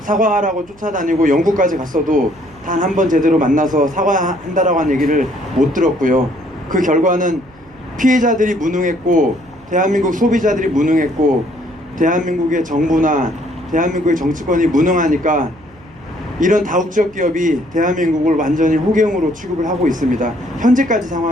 쫓아다니고 영국까지 갔어도 단 한 번 제대로 만나서 사과한다라고 한 얘기를 못 들었고요. 그 결과는 피해자들이 무능했고 대한민국 소비자들이 무능했고 대한민국의 정부나 대한민국의 정치권이 무능하니까 이런 다국적 기업이 대한민국을 완전히 호갱으로 취급을 하고 있습니다. 현재까지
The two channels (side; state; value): right; noise; hum, 27 dB below the sound